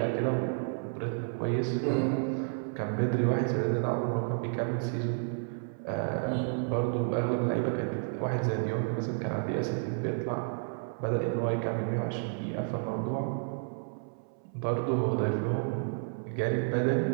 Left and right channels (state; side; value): silent; left; 57 dB below the other